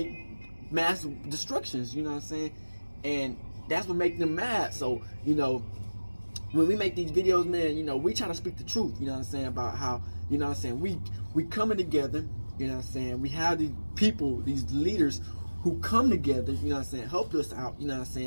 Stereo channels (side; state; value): both; inverted; correlation -1.00